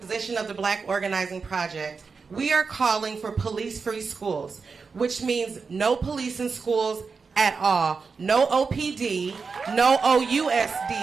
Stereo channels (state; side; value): quieter; left; 4.9 dB